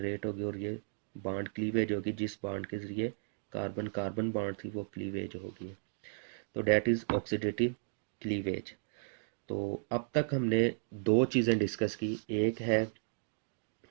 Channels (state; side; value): silent; left; digital silence